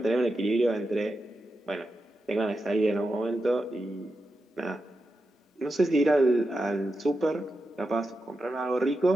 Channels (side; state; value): both; normal; correlation 0.89